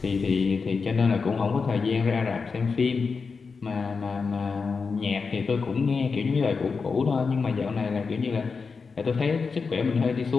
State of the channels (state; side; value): quieter; right; 5.0 dB